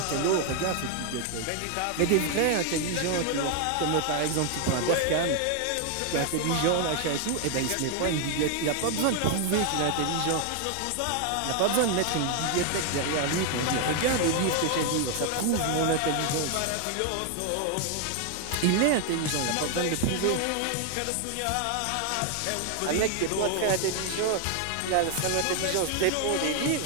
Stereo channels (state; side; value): different; both; correlation 0.01